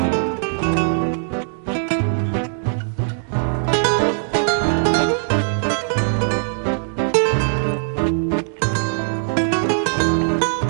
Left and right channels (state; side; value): silent; left; digital silence